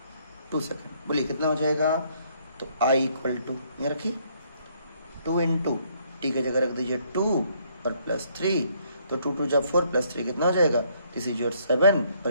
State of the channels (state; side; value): inverted; both; correlation -0.68